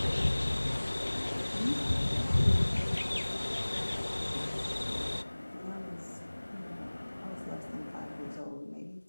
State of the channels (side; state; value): both; inverted; correlation -1.00